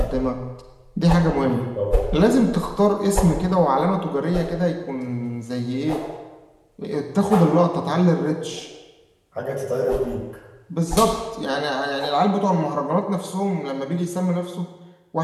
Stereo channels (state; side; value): identical; both; correlation 1.00